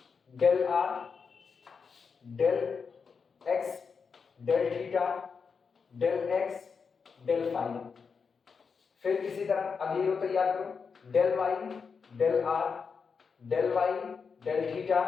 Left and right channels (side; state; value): right; quieter; 5.6 dB